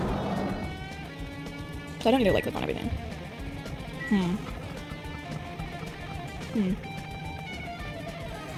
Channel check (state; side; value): identical; both; correlation 1.00